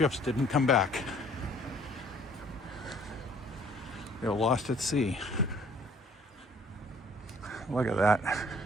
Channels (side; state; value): both; normal; correlation 0.58